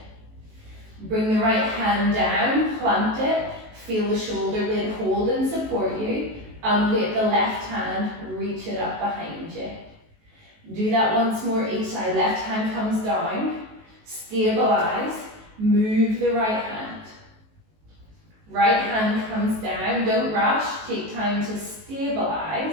Bring the right hand down, plant it. Feel the shoulder blade hold and support you. Ungate the left hand, reach it up behind you. Do that once more each side. Left hand comes down, stabilize, move the right hand. Right hand comes down, don't rush, take time to stabilize,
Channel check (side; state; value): left; late; 19 ms